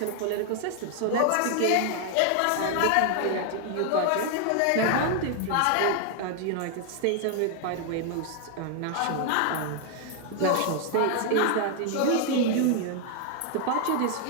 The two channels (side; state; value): both; different; correlation 0.00